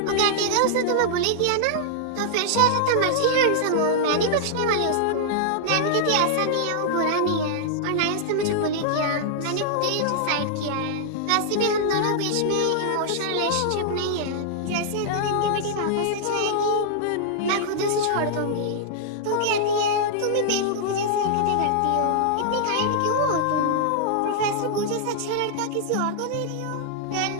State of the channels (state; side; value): different; both; correlation -0.01